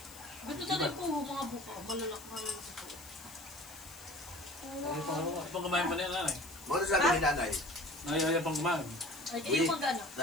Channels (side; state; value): left; noise; hiss, 18 dB below the sound